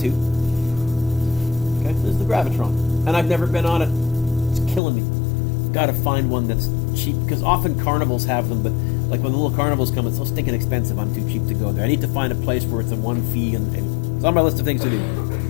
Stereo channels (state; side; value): drops out; right; at 4.8 s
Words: Okay, this is the Gravitron. And I've never been on it. It's killing me. Got to find one that's cheap, because often carnivals have them, but like when the little carnivals come, it's so stinking expensive, I'm too cheap to go there. I need to find a place where it's a one fee, and it's on my list of things to do.